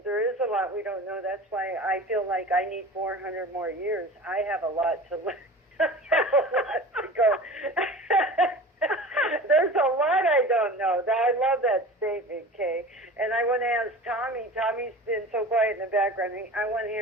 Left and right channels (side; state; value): both; normal; correlation 0.37